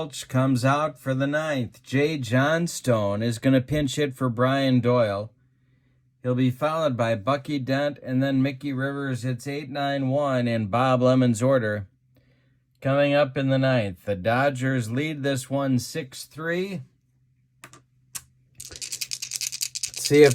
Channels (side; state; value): both; identical; correlation 1.00